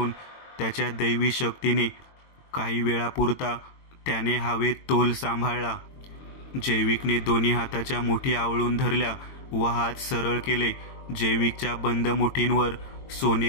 त्याच्या दैवी शक्तीने काही वेळापुरता त्याने हवेत तोल सांभाळला. जैविकने दोन्ही हाताच्या मुठी आवळून धरल्या व हात सरळ केले. जैविकच्या बंद मुठींवर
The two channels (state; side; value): late; right; 22 ms